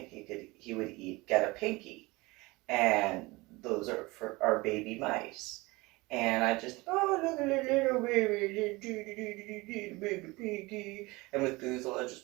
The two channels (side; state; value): left; quieter; 22.9 dB